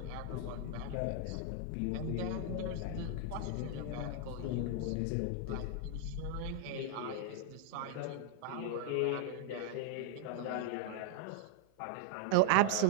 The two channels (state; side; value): different; both; correlation 0.00